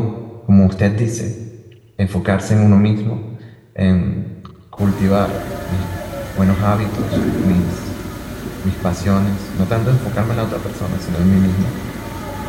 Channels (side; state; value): both; identical; correlation 1.00